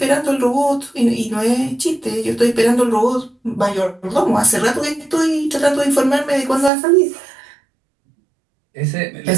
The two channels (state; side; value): drops out; left; at 6.7 s